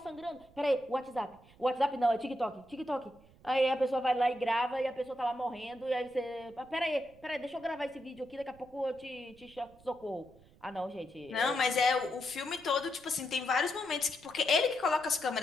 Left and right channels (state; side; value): noise; right; rumble, 26 dB below the sound